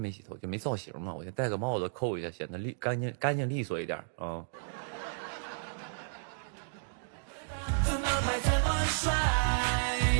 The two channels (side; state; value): left; silent; digital silence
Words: 洗头，就没造型嘛，我就戴个帽子扣一下，显得干净利索一点啊。怎么拍怎么帅，